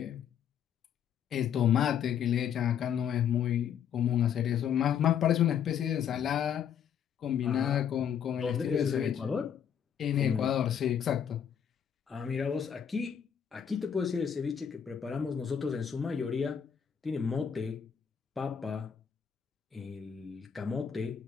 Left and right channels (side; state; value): right; quieter; 8.3 dB